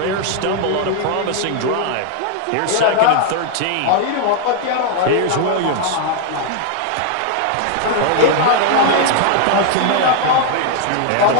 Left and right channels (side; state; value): both; different; correlation 0.00